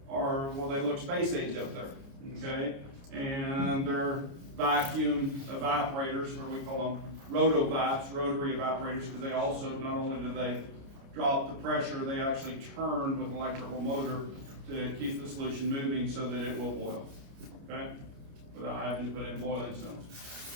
well, they look space age up there, okay? And they're vacuum evaporators, or we call them rotovaps, rotary evaporators, because they also, not only do they drop the pressure, they actually turn with an electrical motor to keep the solution moving so that it will boil, okay? Without having to put in boiling stones.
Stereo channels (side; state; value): left; late; 29 ms